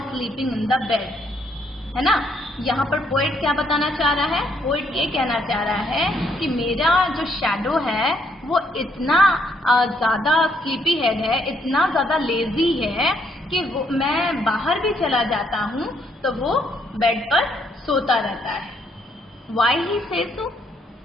sleeping in the bed, है ना? यहाँ पर poet क्या बताना चाह रहा है? Poet ये कहना चाह रहा है कि मेरा जो शैडो है वो इतना ज़्यादा स्लीपी हेड है, इतना ज़्यादा लेजी है कि मैं बाहर भी चला जाता हूँ तो वो बेड पर सोता रहता है। Why he says so?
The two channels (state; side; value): normal; both; correlation 0.71